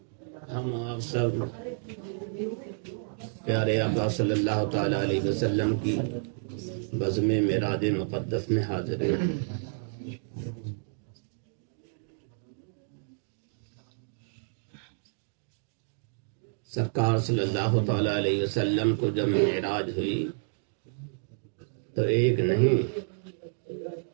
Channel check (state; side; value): silent; left; digital silence